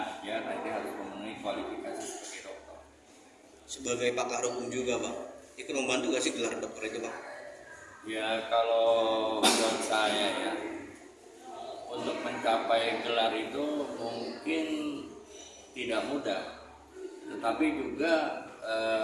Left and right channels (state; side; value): identical; both; correlation 1.00